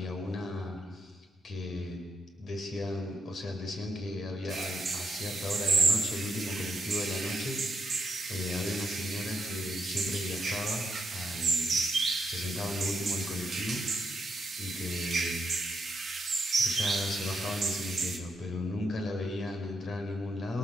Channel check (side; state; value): both; normal; correlation 0.80